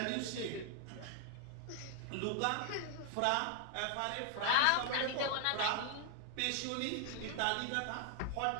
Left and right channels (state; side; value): different; both; correlation 0.00